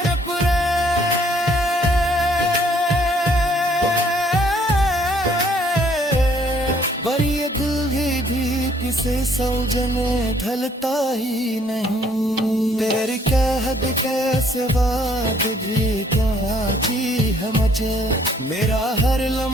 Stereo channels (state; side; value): normal; both; correlation 0.63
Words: अपने, पर ये दिल भी किसे सौजने ढलता ही नहीं। तेरी कहद कैसे बात भी क्या जी है मुझे। मेरा हर